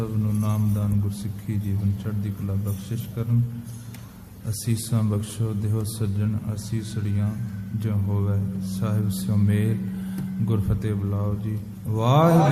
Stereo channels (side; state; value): both; identical; correlation 1.00